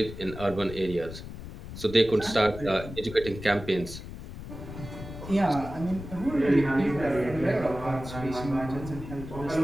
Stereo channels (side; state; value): left; noise; rumble, 11 dB below the sound